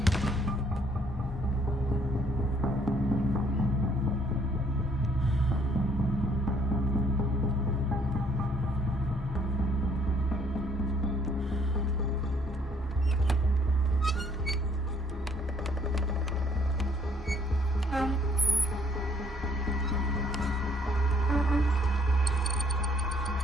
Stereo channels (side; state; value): both; normal; correlation 0.64